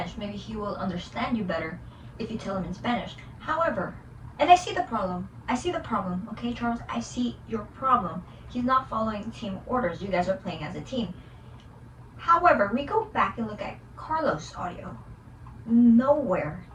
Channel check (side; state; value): both; identical; correlation 1.00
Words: Maybe he will understand you better if you tell him in Spanish. However, and I see the problem. Okay, Charles? I see your problem. He's not following team orders. You guys are playing as a team. However, we go back and look at Carlos' audio. Nowhere